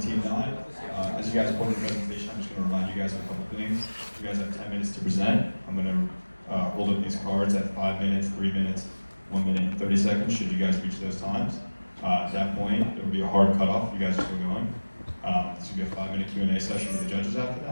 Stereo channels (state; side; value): inverted; both; correlation -1.00